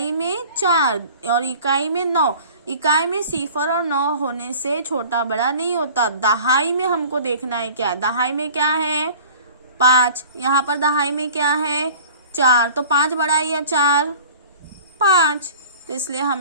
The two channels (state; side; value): inverted; both; correlation -0.44